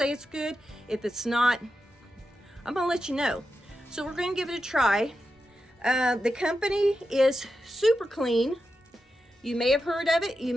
it's good. If it's not, I'm going to let you know. So we're going to give it a try. The company is Super Clean. You may have heard of it, you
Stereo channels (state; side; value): normal; both; correlation 0.89